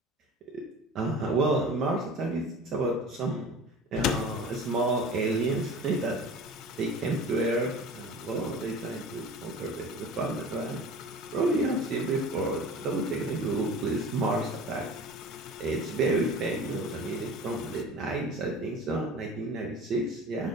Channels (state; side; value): normal; both; correlation 0.39